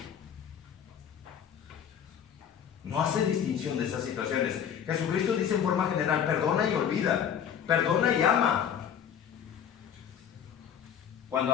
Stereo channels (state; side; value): quieter; right; 8.6 dB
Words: No hace distinción de esas situaciones. Jesucristo dice en forma general, perdona y olvida, perdona y ama. Cuando